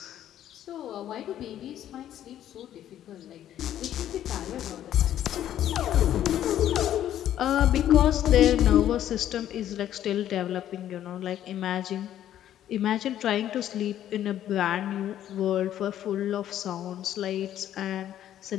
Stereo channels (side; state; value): right; quieter; 11.5 dB